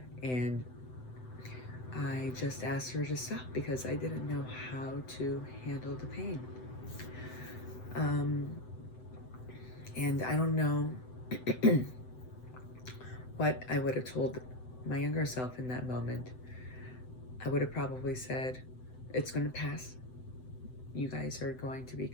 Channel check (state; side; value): late; right; 7.9 ms